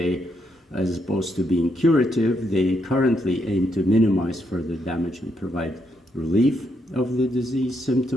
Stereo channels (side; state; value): both; normal; correlation 0.78